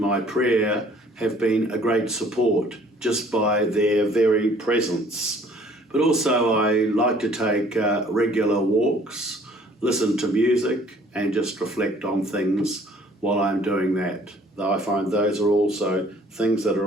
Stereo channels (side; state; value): both; normal; correlation 0.56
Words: prayer have been a great support just by their very presence. But also I like to take regular walks, listen to music and just reflect on things while I'm doing that. Though I find those are also things that are